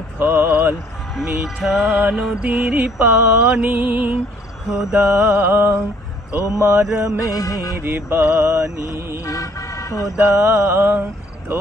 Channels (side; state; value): both; normal; correlation 0.61